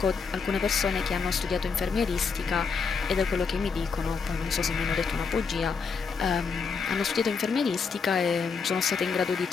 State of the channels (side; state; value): right; quieter; 5.3 dB